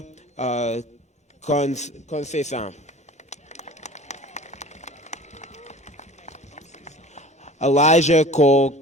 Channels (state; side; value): normal; both; correlation 0.43